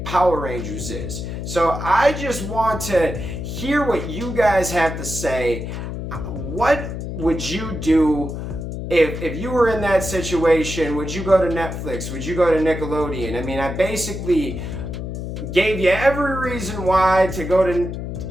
Power Rangers is. So I just want to hear what you guys have to say. What would you do if you were in that situation? Would you go to Netflix? Would you go to Nickelodeon? I mean, I basically gave you every reason why to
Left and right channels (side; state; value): left; noise; hum, 6 dB below the sound